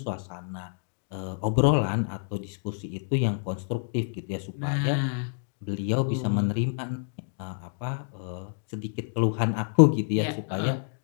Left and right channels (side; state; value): right; silent; digital silence